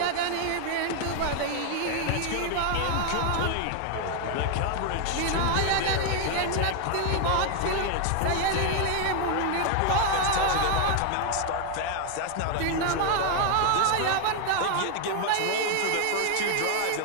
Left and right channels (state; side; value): different; both; correlation 0.00